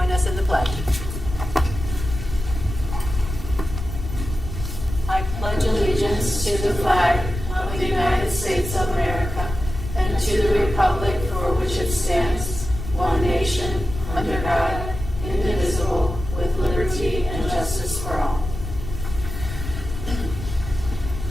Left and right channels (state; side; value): noise; left; rumble, 7 dB below the sound